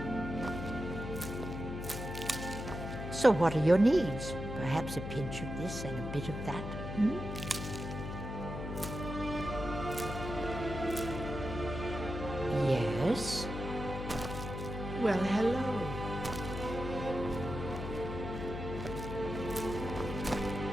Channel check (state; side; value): noise; left; hum, 6 dB below the sound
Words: So what are your needs? Perhaps a pinch of this and a bit of that? Hmm? Yes? Well, hello.